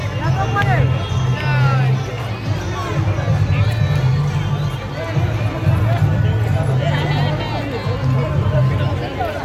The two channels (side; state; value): both; identical; correlation 1.00